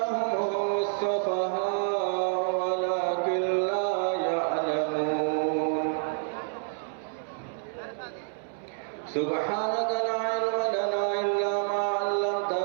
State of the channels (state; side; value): silent; left; 59 dB below the other